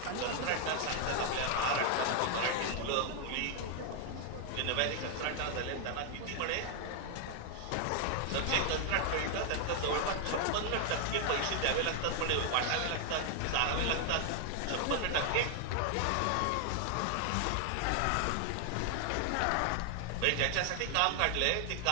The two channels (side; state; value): both; different; correlation 0.00